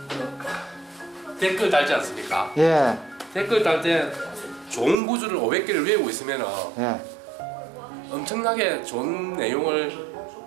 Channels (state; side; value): drops out; left; at 5.0 s